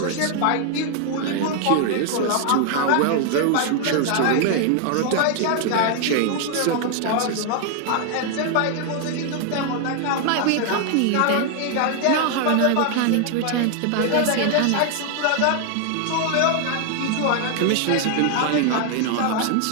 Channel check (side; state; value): both; different; correlation 0.00